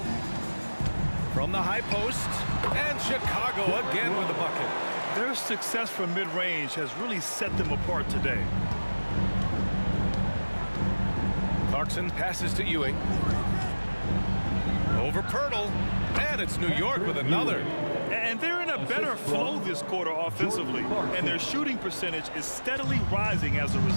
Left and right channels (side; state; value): both; inverted; correlation -1.00